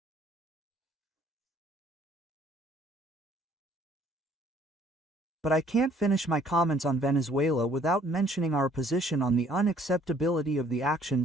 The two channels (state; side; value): normal; both; correlation 0.60